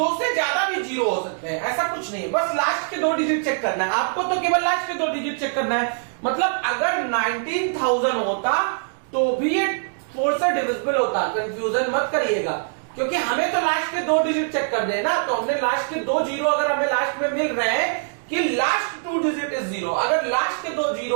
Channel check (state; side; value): silent; left; digital silence